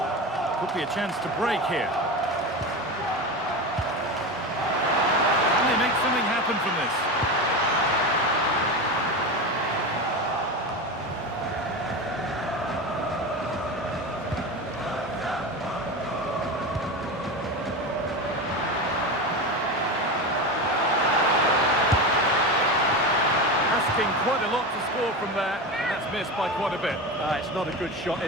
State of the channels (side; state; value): both; normal; correlation 0.22